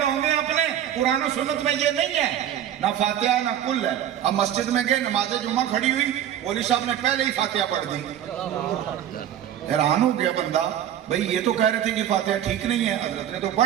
میں اپنے قرآن و سنت میں یہ نہیں ہے, نہ فاتحہ نہ کل ہے. اب مسجد میں گئے, نماز جمعہ کھڑی ہوئی, مولوی صاحب نے پہلے ہی فاتحہ پڑھ دی. حیران ہو گیا بندہ, بھئی یہ تو کہہ رہے تھے کہ فاتحہ ٹھیک نہیں ہے, حضرت نے تو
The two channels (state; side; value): quieter; left; 10.6 dB